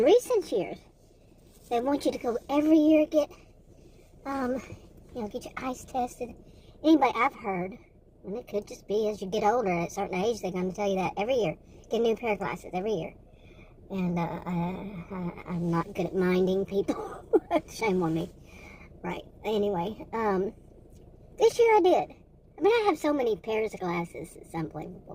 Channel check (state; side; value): identical; both; correlation 1.00